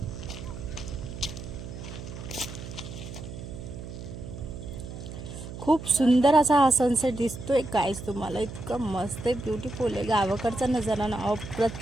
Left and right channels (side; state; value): right; noise; hum, 10 dB below the sound